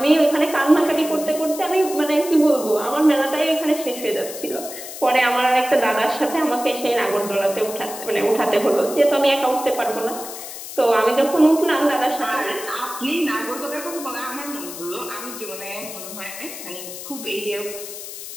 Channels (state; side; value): noise; left; hiss, 11 dB below the sound